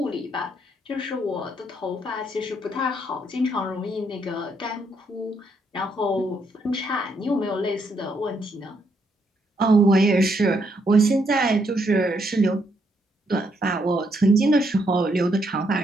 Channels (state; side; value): normal; both; correlation 0.74